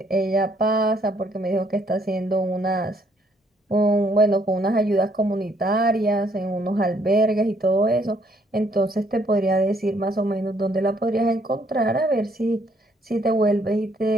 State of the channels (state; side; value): normal; both; correlation 0.68